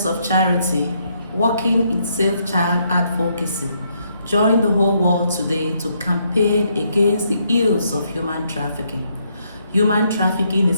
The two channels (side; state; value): both; inverted; correlation -0.74